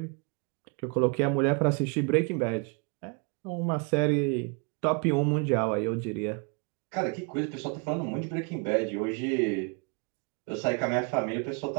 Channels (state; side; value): quieter; left; 33.5 dB